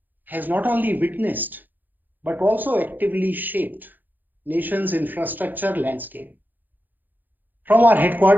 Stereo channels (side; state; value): left; late; 0.086 ms